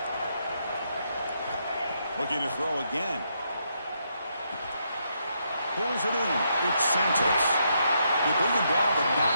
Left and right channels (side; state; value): both; inverted; correlation -0.78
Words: Looking to throw again. Pulls it in. It's Santos. They bring him down, but not